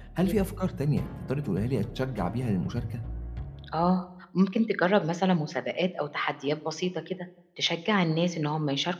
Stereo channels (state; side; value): identical; both; correlation 1.00